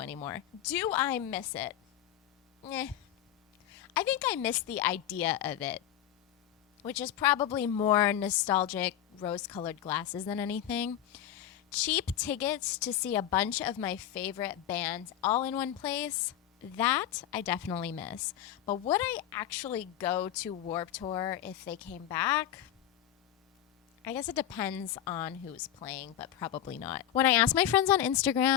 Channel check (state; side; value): quieter; right; 11.3 dB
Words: Do I miss it? I think I miss the idea of it, which is probably more nostalgic rose-colored glasses than anything. Cheap tickets to see a bunch of my favorite bands all in one place, that I definitely miss. But would I actually go to Warped Tour if they came back? I guess it depends on who's playing, but probably not. When I asked my friends on